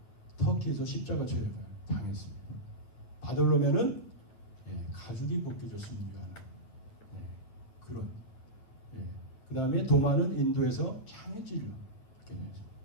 터키에서 십자가 처형을 당했습니다. 바돌로메는 가죽이 벗겨져 순교하는 그런. 그 다음에 도마는 인도에서 창해질로 이렇게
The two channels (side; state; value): right; late; 9.1 ms